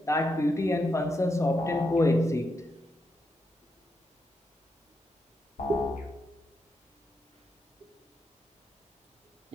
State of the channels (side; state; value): both; normal; correlation 0.83